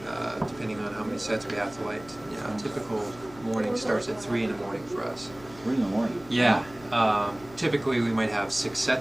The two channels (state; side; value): noise; left; hum, 21 dB below the sound